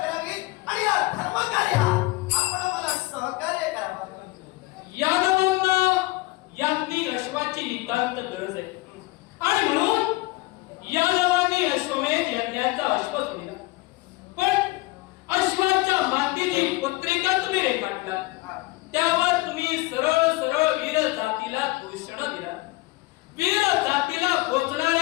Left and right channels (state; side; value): quieter; right; 21.3 dB